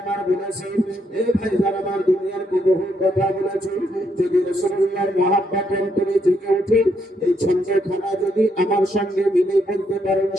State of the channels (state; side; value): normal; both; correlation 0.76